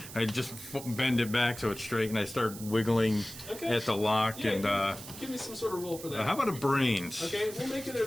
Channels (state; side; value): noise; right; hiss, 13 dB below the sound